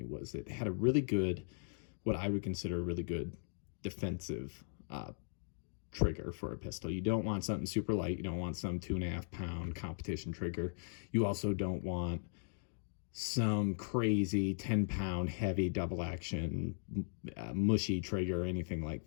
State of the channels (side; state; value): right; silent; digital silence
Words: was it had a really good, what I would consider a really good defensive trigger for a pistol. You don't want something super light. You don't want some 2.5 pound competition trigger. You also don't want some crazy 10-pound heavy double action mushy trigger or anything like